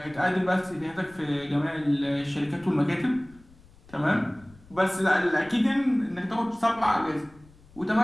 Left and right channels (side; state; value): left; noise; rumble, 25 dB below the sound